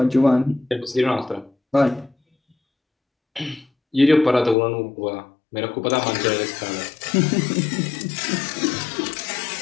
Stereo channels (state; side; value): drops out; right; at 4.5 s